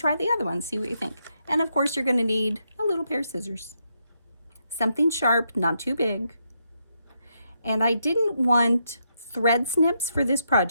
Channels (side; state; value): both; inverted; correlation -0.80